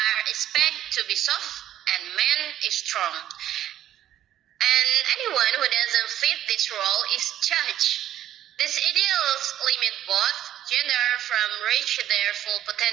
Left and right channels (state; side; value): quieter; left; 11.9 dB